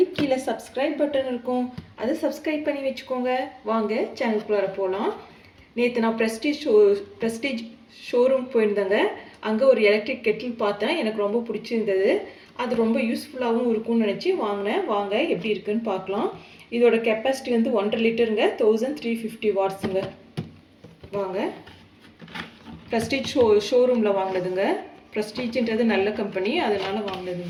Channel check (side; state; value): both; identical; correlation 1.00